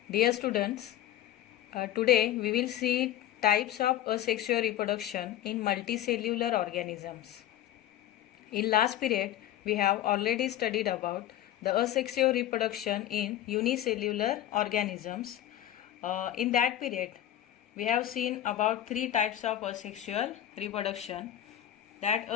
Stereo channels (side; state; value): right; quieter; 12.5 dB